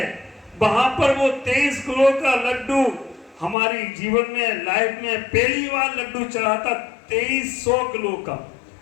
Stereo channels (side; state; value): right; drops out; at 3.6 s